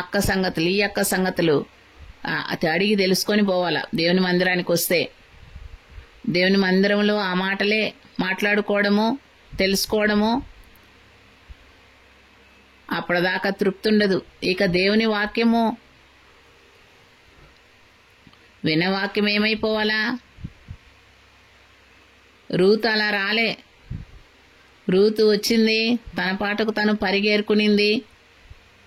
అక్క సంగతులు ఈ అక్క సంగతులు అడిగి తెలుసుకొని పోవాలా. దేవుని మందిరానికి వస్తే దేవుని మందిరంలో ఆ మాటలే మాట్లాడుకోవడము, తెలుసుకోవడము, అప్పటిదాకా తృప్తి ఉండదు. ఇక దేవుని వాక్యము వినవాక్యం ఏమైపోవాలా? రూతు అలా రాలే. రూతు వచ్చింది, తన పాటకు తను పరిగేరుకునింది.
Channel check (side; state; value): both; identical; correlation 1.00